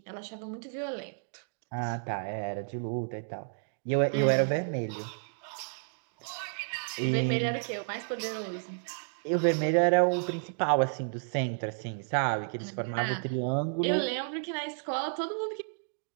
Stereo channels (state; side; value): silent; left; digital silence